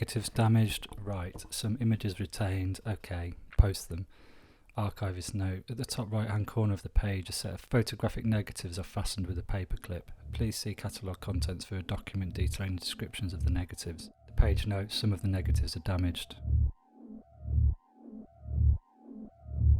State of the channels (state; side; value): identical; both; correlation 1.00